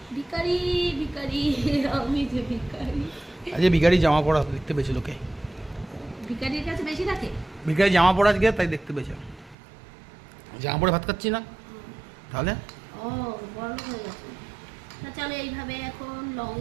ভিখারি ভিখারি, আমি যে ভিখারি। আজকে ভিখারি জামা পরা দেখতে পেয়েছে লোকে। ভিখারির কাছে বেশি থাকে। ভিখারি জামা পরা আজকে তাই দেখতে পেয়েছে। জামা পরে ভাত খাচ্ছি না তাহলে। ও বড় হয়ে গেছে। না চলো এইভাবে এখন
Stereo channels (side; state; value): left; drops out; at 9.6 s